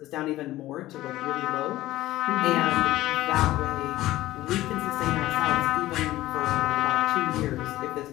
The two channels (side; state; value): right; quieter; 16.0 dB